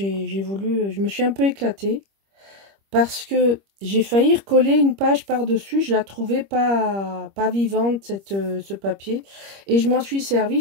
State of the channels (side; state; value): left; late; 25 ms